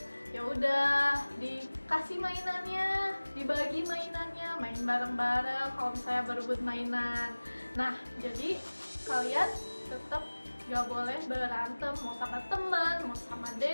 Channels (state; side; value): inverted; both; correlation -1.00